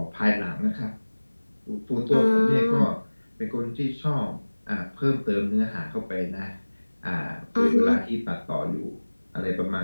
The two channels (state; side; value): inverted; both; correlation -1.00